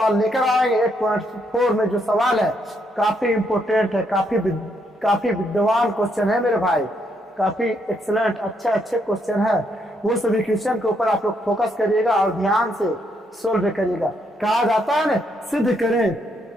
लेकर आएंगे। 8.4 में जो सवाल है काफी इंपोर्टेंट है, काफी विद्वान क्वेश्चन है मेरे भाई, काफी एक्सलेंट अच्छे क्वेश्चन है। वो सभी क्वेश्चन के ऊपर आप लोग फोकस करिएगा और ध्यान से सोल्व करिएगा। कहा जाता है ना, सिद्ध करें।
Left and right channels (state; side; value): normal; both; correlation 0.75